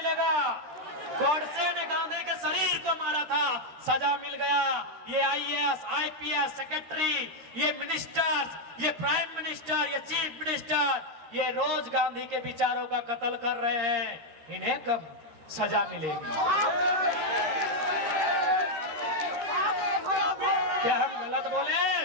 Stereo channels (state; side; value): late; left; 13 ms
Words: गोडसे ने गांधी के शरीर को मारा था, सजा मिल गया। ये आईएएस आईपीएस सेक्रेटरी, ये मिनिस्टर्स, ये प्राइम मिनिस्टर, ये चीफ मिनिस्टर, ये रोज गांधी के विचारों का कत्ल कर रहे हैं, इन्हें कब सजा मिलेगी? क्या हम गलत बोले?